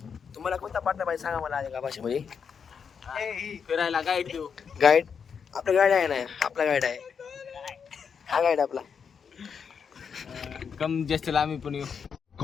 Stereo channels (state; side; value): quieter; right; 6.6 dB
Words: तुम्हाला कोणता पार्टनर पाहिजे सांगा मला आधी का भाषेमध्ये. फिरायला गाईड देऊ. गाईड? आपला गाईड आहे ना, आपला गाईड आहे. हा गाईड आपला. कम जास्त आम्ही पण येऊ.